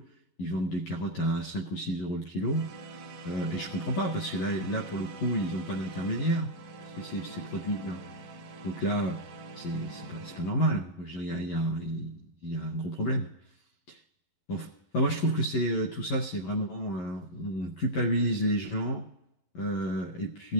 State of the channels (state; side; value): late; right; 11 ms